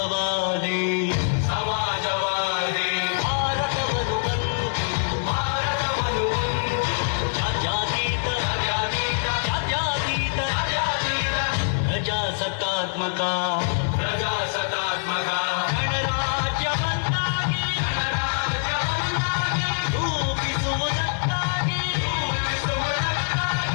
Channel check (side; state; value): right; silent; digital silence